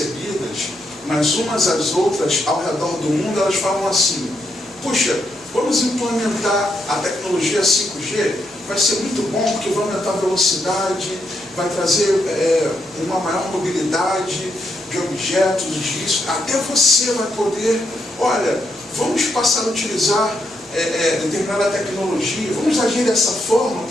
mas umas às outras, ao redor do mundo, elas falam assim, puxa, vamos implementar a tecnologia 5G, vai ser muito bom porque vai aumentar a velocidade, vai trazer uma maior mobilidade de objetos, disso, até você vai poder, olha, vamos passar a utilizar determinada tecnologia, vamos agir dessa forma,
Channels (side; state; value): both; normal; correlation 0.79